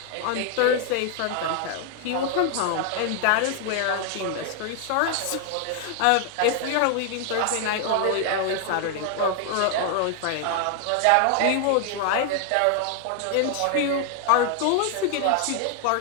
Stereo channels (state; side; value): different; both; correlation 0.00